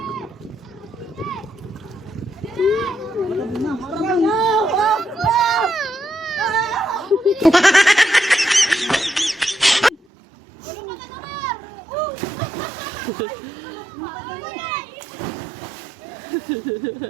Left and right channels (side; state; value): left; drops out; at 10.0 s